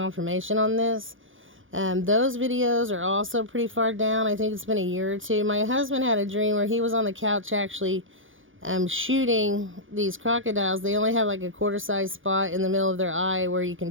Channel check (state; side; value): late; left; 0.58 ms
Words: on this. Those videos are also pretty far down. I think it's been a year or 2. My husband had a dream where he was on the couch actually shooting these crocodiles. They only have like a quarter-size spot in the middle of their eye where you can